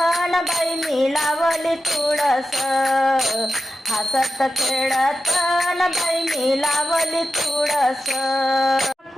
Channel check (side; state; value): both; normal; correlation 0.91